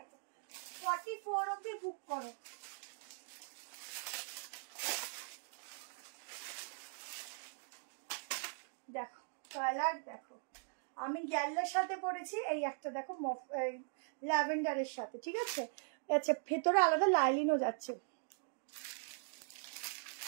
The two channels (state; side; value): silent; left; digital silence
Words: 44 অব্দি বুক করো। দেখো কালার দেখো, আমি গ্যালার সাথে পরেছি, এই একটা দেখো ল্যাভেন্ডারের সাথে, ঠিক আছে। আচ্ছা ভেতরে আলাদা লাইলিনও যাচ্ছে,